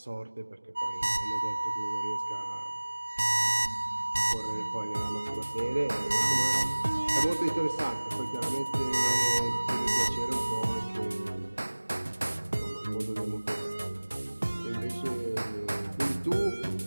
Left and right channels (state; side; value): inverted; both; correlation -1.00